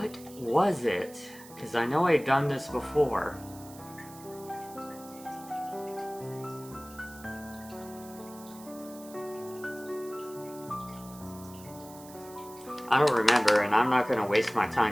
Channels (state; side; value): noise; right; hiss, 19 dB below the sound